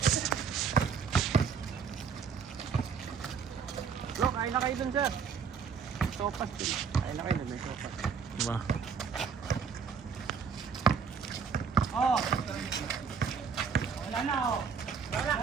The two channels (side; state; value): left; quieter; 6.2 dB